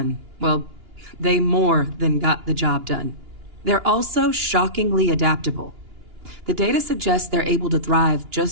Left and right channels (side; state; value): left; late; 2.9 ms